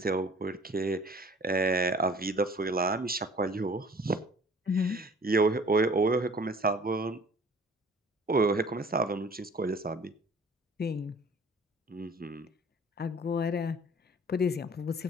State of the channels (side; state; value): both; normal; correlation 0.50